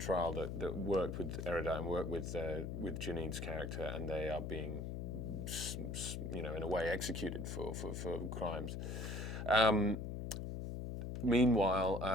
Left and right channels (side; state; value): left; noise; hum, 4 dB below the sound